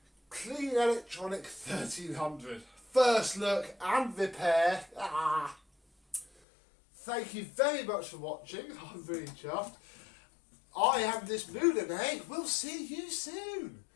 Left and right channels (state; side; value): drops out; right; at 6.3 s